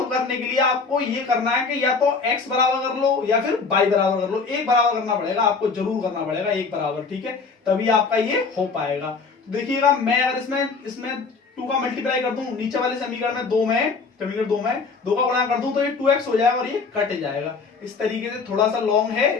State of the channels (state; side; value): quieter; right; 4.7 dB